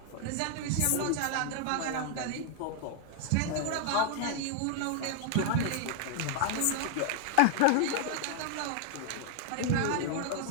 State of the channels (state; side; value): different; both; correlation 0.00